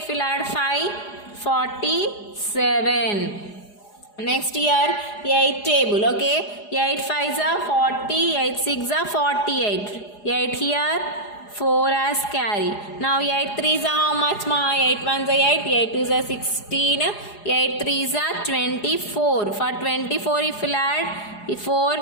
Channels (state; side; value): late; right; 4.8 ms